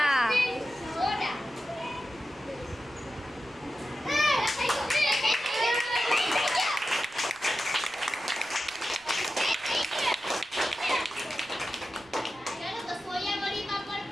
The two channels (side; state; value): right; noise; rumble, 28 dB below the sound